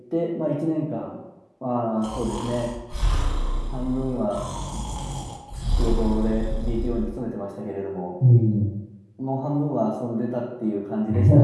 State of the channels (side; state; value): both; identical; correlation 1.00